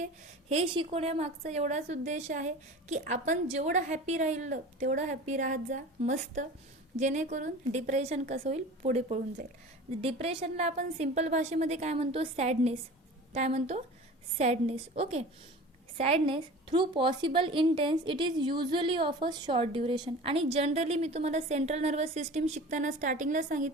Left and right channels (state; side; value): normal; both; correlation 0.38